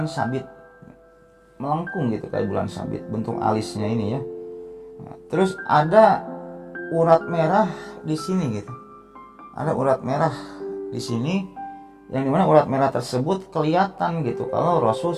sabit, melengkung gitu kayak bulan sabit bentuk alisnya ini ya. Terus ada urat merah di sini gitu. Ada urat merah di sini yang dimana urat merah tersebut kelihatan gitu kalau Rasul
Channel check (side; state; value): both; identical; correlation 1.00